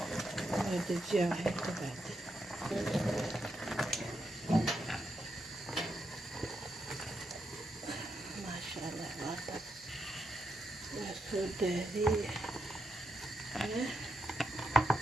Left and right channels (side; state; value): both; normal; correlation 0.83